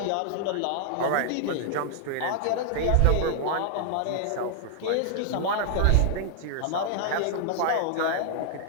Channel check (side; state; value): both; different; correlation 0.00